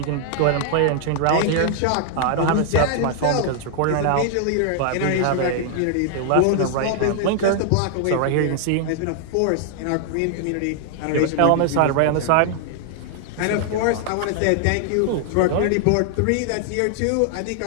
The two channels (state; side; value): different; both; correlation 0.00